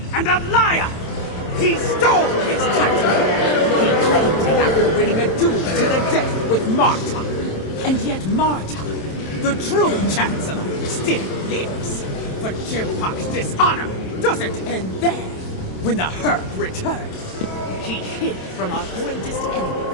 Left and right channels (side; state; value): right; late; 27 ms